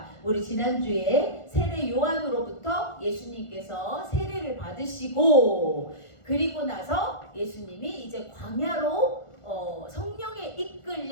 우리 지난주에 세례 요한으로부터 예수님께서 세례를 받으시고, 그리고 나서 예수님이 이제 광야로 성령에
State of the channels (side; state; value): right; late; 1.4 ms